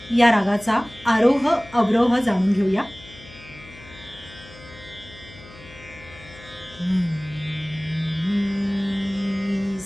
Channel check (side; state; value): left; noise; hum, 20 dB below the sound